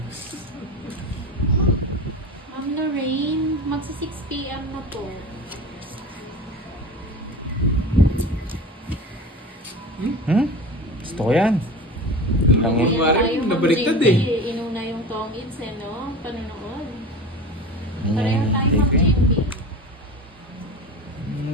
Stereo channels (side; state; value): both; normal; correlation 0.32